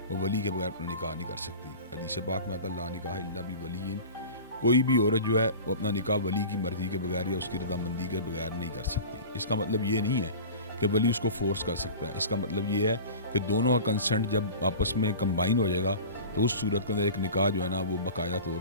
वो वली के बगैर अपना निकाह नहीं कर सकती। हदीस पाक में आता ला निकाह इल्ला बि वलीइन, कोई भी औरत जो है वो अपना निकाह वली की मर्जी के बगैर या उसकी रजामंदी के बगैर नहीं कर सकती। इसका मतलब ये नहीं है कि वली उसको फोर्स कर सकता है। इसका मतलब ये है कि दोनों का कंसेंट जब आपस में कंबाइन हो जाएगा तो उस सूरत के अंदर एक निकाह जो है ना वो बाकायदा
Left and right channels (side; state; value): both; inverted; correlation -0.36